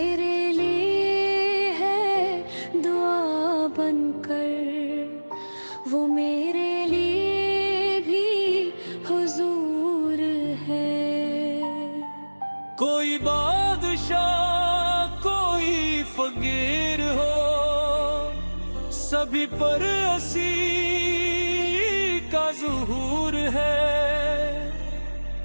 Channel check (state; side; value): inverted; both; correlation -1.00